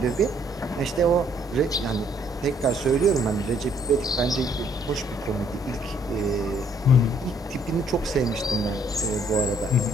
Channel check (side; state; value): both; normal; correlation 0.66